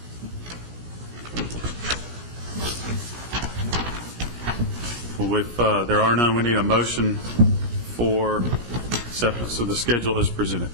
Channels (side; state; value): left; late; 17 ms